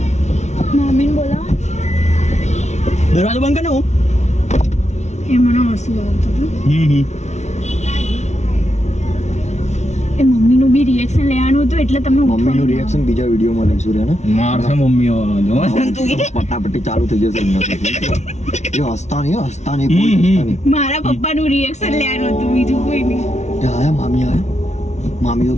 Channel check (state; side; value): late; right; 0.32 ms